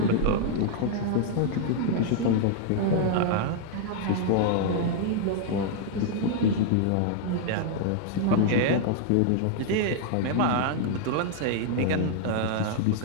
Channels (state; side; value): different; both; correlation 0.00